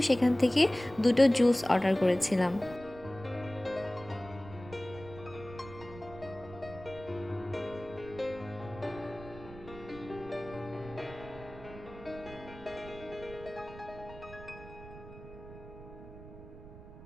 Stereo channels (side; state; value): right; noise; rumble, 16 dB below the sound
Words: সেখান থেকে দুটো জুস অর্ডার করেছিলাম।